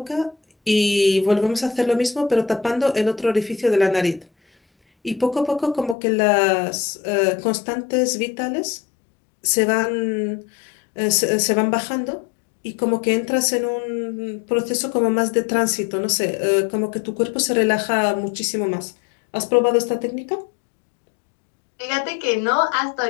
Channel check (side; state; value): right; drops out; at 6.0 s